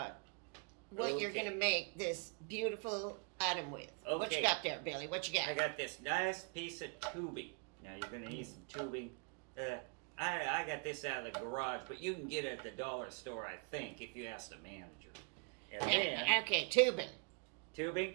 what you're Okay. going to make this beautiful item with. What you Okay. got there, Billy? What you got? I got this nice piece of tubing. Now, you're going to need some tubing. I got this out of the garage, but you can get it at the dollar store, I think, if you ask the manager. And then, Okay, tubing.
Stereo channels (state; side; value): quieter; left; 35.9 dB